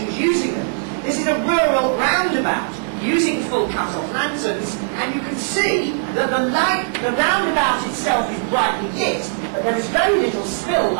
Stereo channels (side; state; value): left; silent; 59 dB below the other